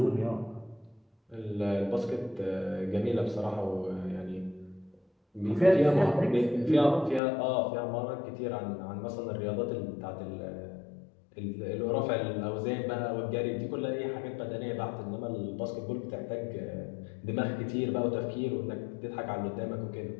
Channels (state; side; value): drops out; right; at 7.2 s